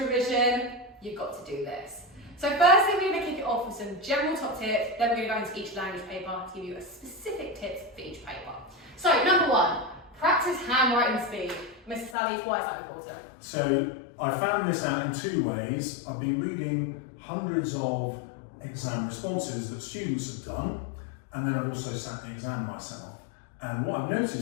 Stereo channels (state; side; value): drops out; right; at 12.2 s